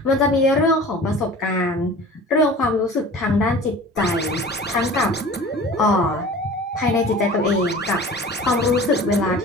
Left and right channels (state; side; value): normal; both; correlation 0.41